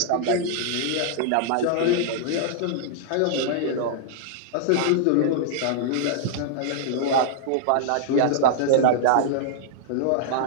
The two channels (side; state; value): both; different; correlation -0.01